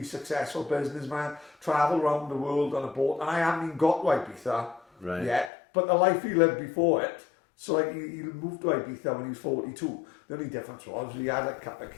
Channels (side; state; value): right; drops out; at 5.5 s